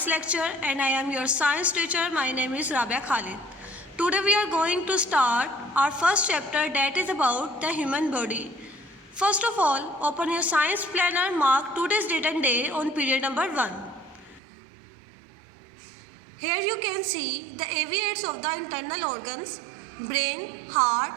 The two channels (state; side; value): drops out; left; at 14.4 s